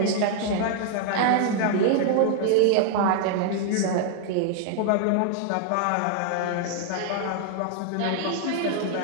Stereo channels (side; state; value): both; different; correlation 0.00